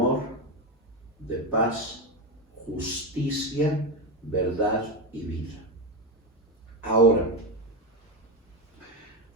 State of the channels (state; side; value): normal; both; correlation 0.14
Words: de paz, justicia, verdad y vida. Ahora,